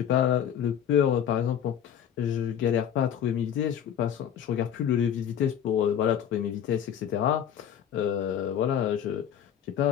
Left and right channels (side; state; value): right; quieter; 9.4 dB